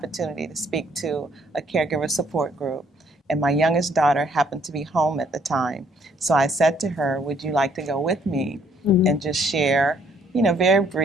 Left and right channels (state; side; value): normal; both; correlation 0.65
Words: to speak to a caregiver support group, and my youngest daughter happened to be home at the time. So I said to her, would you like to go with me and just share, very